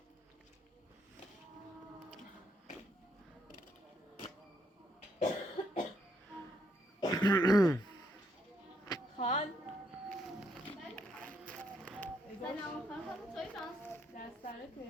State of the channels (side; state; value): both; normal; correlation 0.74